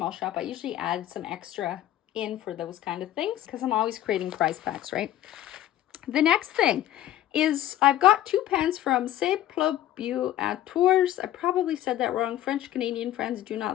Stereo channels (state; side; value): quieter; right; 12.8 dB